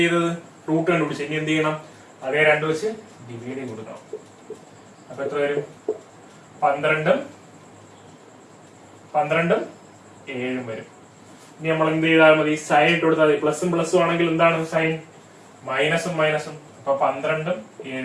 ചെയ്തത്? റൂട്ട് കണ്ടുപിടിച്ചത്. ഇനി എന്ത് ചെയ്യണം? അതേ 2 വെച്ച് ഡിവൈഡ് ചെയ്ത് കൊടുക്കണം. അപ്പൊ എത്ര വരും? 12ഉം 7ഉം വരും. ഇനി നമ്മൾ എന്ത് ചെയ്താൽ മതി? സൈൻ ഇട്ട് കൊടുത്താൽ മതി. പ്ലസും പ്ലസും ആണെങ്കിൽ എന്താണ് സൈൻ? മൈനസും മൈനസും. അപ്പൊ 12ഉം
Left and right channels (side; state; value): both; identical; correlation 1.00